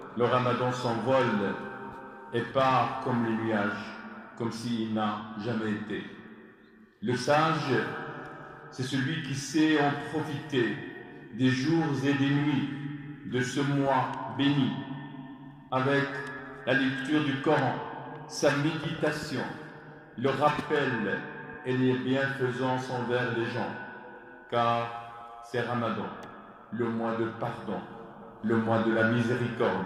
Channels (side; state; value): both; identical; correlation 1.00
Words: le Ramadan s'envole et part comme les nuages, comme s'il n'a jamais été. Le sage, c'est celui qui sait en profiter des jours et des nuits de ce mois béni, avec la lecture du Coran, sa méditation, le rappel et les bienfaisances envers les gens, car c'est Ramadan, le mois de pardon, le mois de la